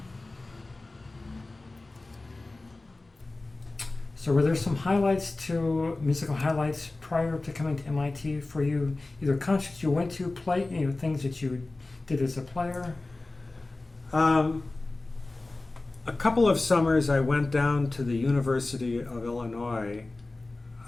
So were there some musical highlights prior to coming to MIT for you? Either concerts you went to, things that you did as a player? A couple of summers I went down to the University of Illinois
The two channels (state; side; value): quieter; right; 3.1 dB